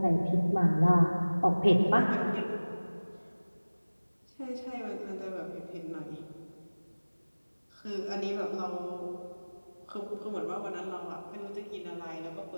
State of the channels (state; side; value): inverted; both; correlation -1.00